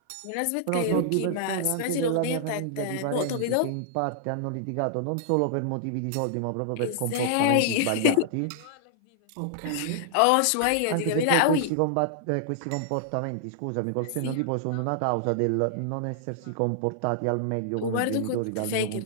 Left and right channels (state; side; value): different; both; correlation -0.01